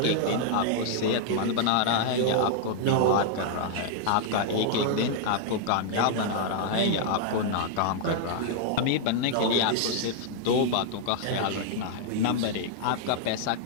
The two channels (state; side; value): different; both; correlation -0.01